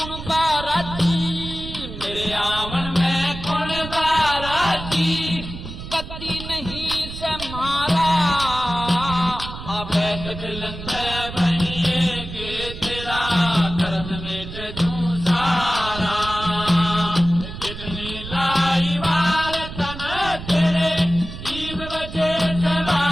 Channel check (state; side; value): noise; right; rumble, 10 dB below the sound